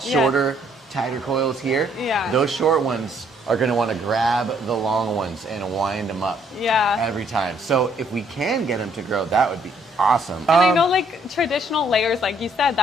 shorter, tighter coils here, those short ones are going to want to grab the long ones and wind them up every time. So if we can get them to grow, that would be awesome. And I know like traditional layers, like you said,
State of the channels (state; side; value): normal; both; correlation 0.67